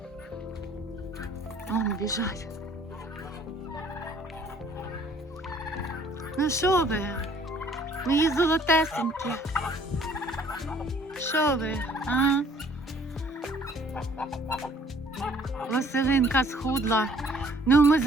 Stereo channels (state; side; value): normal; both; correlation 0.57